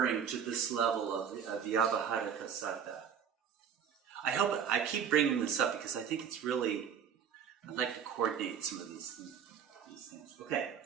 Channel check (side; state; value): left; quieter; 7.9 dB